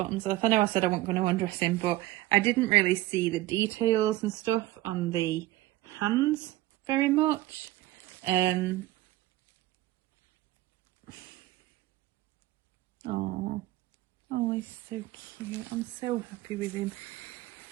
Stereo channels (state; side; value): quieter; left; 16.7 dB